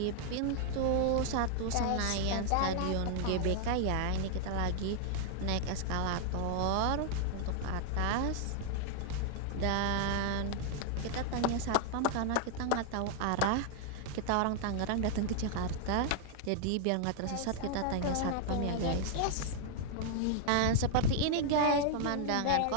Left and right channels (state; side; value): different; both; correlation 0.00